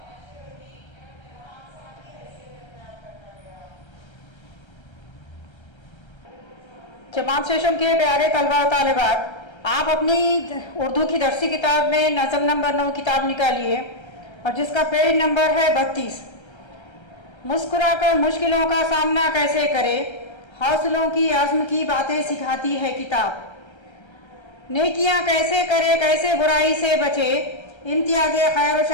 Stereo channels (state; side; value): late; right; 1.3 ms